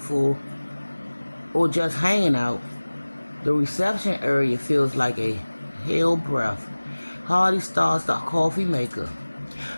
or just hanging out, the reception area feels like a hell breath. Harley starts the coffee maker.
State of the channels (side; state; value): both; inverted; correlation -1.00